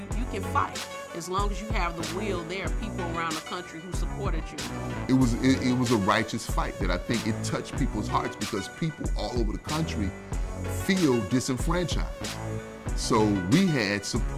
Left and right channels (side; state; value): both; identical; correlation 1.00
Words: can fight. As long as you have the will, there are people around the country who supported you. It was a righteous fight that I think it touched people's hearts because people all over the country feel disenfranchised. So we had